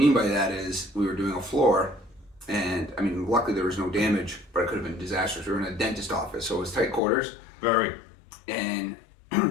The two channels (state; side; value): drops out; right; at 7.0 s